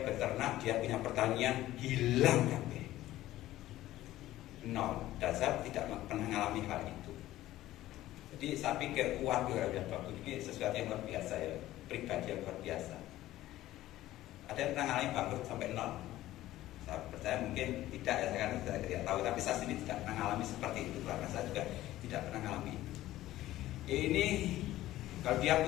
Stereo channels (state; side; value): quieter; right; 15.1 dB